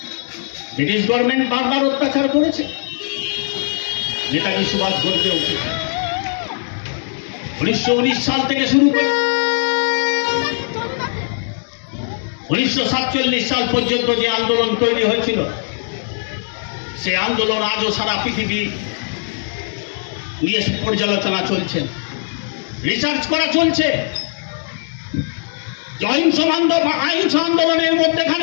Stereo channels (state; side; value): silent; right; digital silence